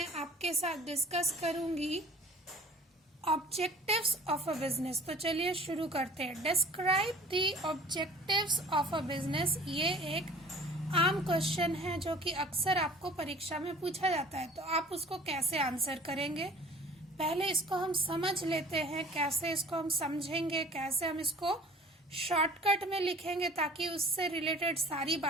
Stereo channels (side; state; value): both; normal; correlation 0.47